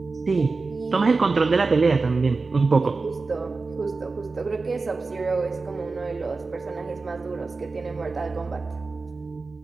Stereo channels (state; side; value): quieter; left; 4.0 dB